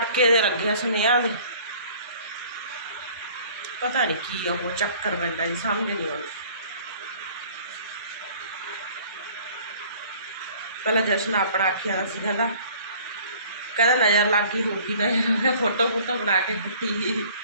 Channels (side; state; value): both; inverted; correlation -0.52